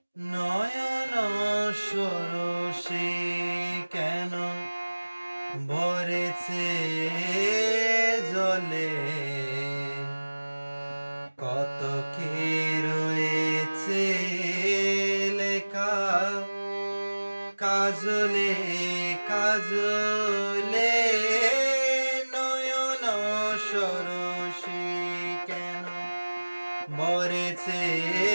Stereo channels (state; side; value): inverted; both; correlation -1.00